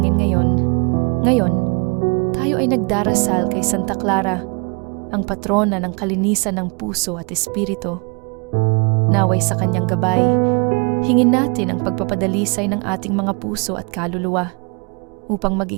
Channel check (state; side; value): quieter; left; 33.4 dB